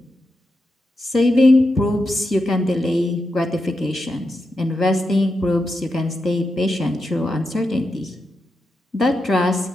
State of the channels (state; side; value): normal; both; correlation 0.87